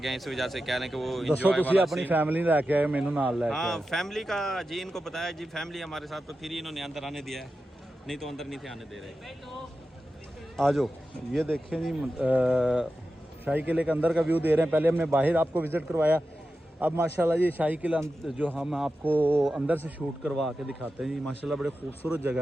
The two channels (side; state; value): both; normal; correlation 0.92